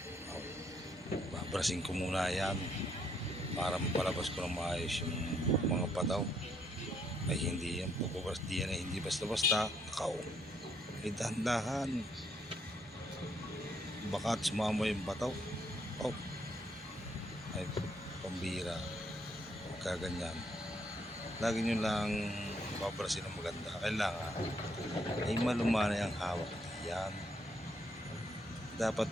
babrasin ko muna yan para mapalabas ko ng maayos yung mga pataw. Ay hindi yung pagbabaras diyan ay hindi basta-basta. Nakaw. Ay dahan-dahan. Baka sumama yung bataw. Oh. Ay pambira. Huwag kaganyan. Lagi nyo lang babarasin ng maganda. Kailangan ay malumanay ang hawak diyan. Dapat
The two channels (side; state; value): both; normal; correlation 0.72